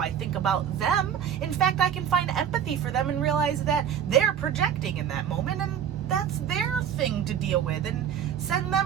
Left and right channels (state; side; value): quieter; left; 8.8 dB